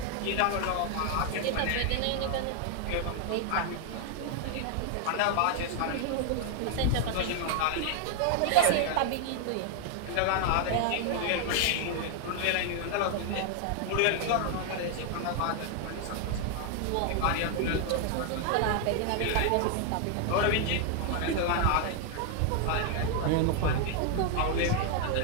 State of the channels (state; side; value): different; both; correlation 0.00